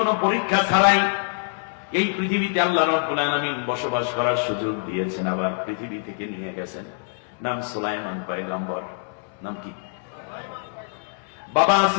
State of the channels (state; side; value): silent; right; 61 dB below the other